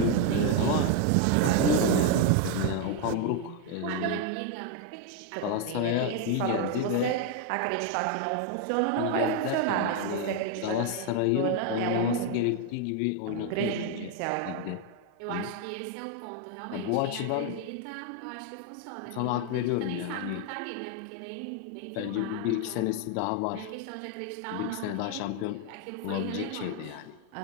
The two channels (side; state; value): both; different; correlation 0.01